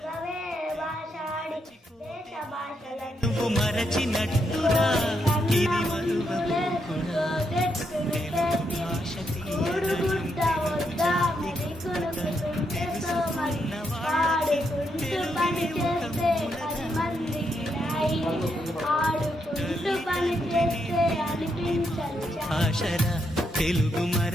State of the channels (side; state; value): both; normal; correlation 0.80